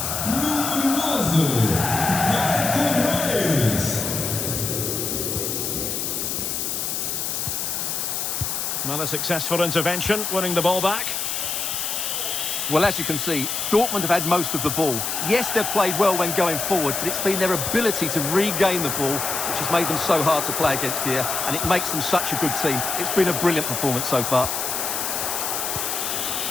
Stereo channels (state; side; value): noise; left; hiss, 2 dB below the sound